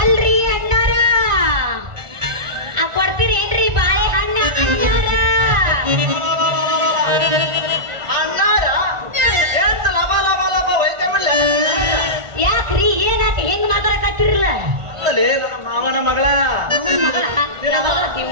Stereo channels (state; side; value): late; left; 1.4 ms